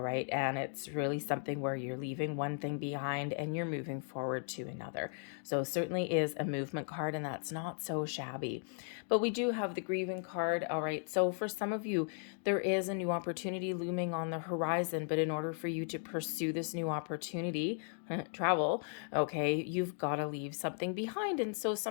right, and it's really something where you're leaving one thing behind and you're moving forward to another. So certainly is a movement card, and that's not so shabby. But we do have the grieving card. All right, so for some of you, there is a new opportunity looming on the horizon, but in order for you to pursue this new opportunity, travel, okay, you've got to leave something behind. And so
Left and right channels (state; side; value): silent; right; 54 dB below the other